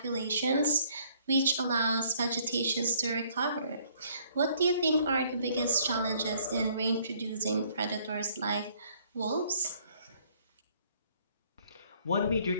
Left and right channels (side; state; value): both; inverted; correlation -0.63